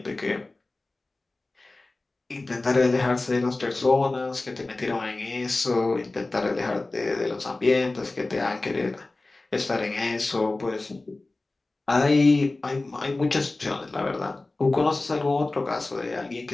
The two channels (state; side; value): quieter; right; 3.1 dB